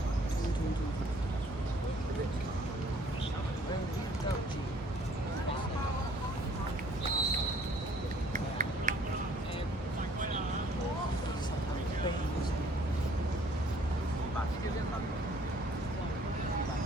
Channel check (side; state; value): both; normal; correlation 0.59